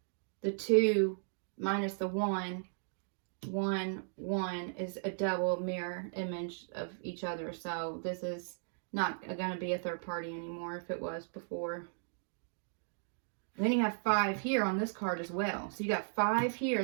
the 2 minus the 1, 1, 1 is a double mirror image of each other. So this is not going to be a third party anymore if it was before. And then you have 5 here on this card as well. So you got 5 here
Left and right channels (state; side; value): silent; left; digital silence